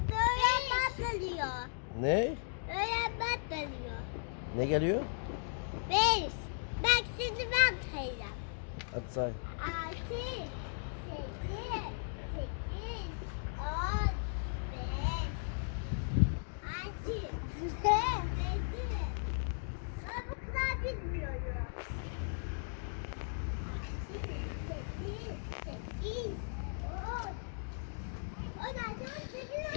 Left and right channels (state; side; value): silent; right; digital silence